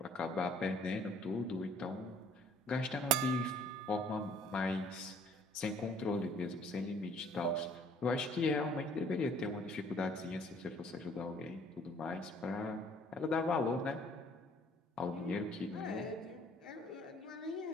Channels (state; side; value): normal; both; correlation 0.57